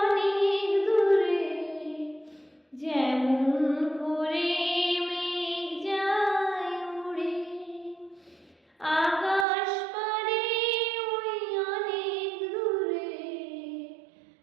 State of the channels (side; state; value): left; drops out; at 9.5 s